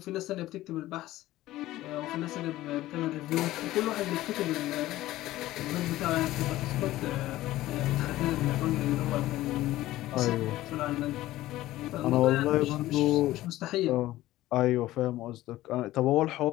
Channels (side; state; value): right; quieter; 15.9 dB